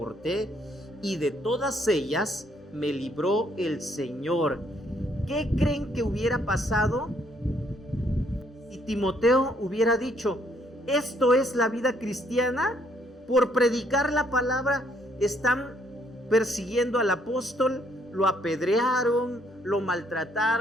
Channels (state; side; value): normal; both; correlation 0.68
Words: Y de todas ellas me libró el Señor. ¿Qué creen que hubiera pasado si Timoteo hubiera dicho, esto es la vida cristiana? Por predicar la palabra están persiguiendo al apóstol, lo apedrearon, lo